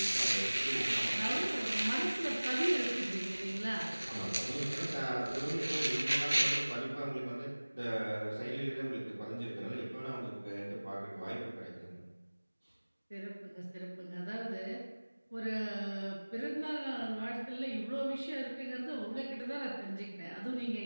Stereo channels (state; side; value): inverted; both; correlation -1.00